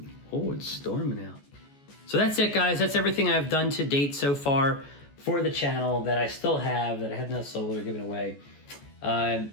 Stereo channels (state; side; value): late; right; 14 ms